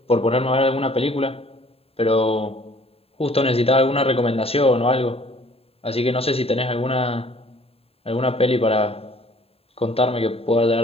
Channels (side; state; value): right; late; 0.28 ms